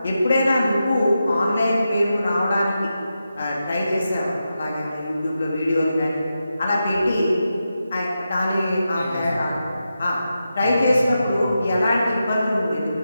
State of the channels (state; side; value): inverted; both; correlation -0.89